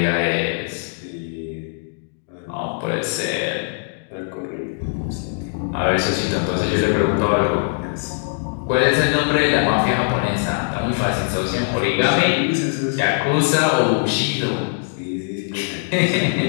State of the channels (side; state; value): right; silent; digital silence